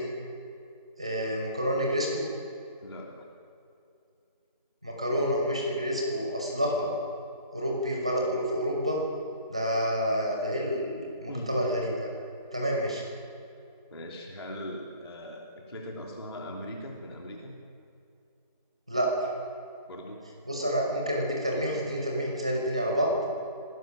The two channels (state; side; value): inverted; both; correlation -0.47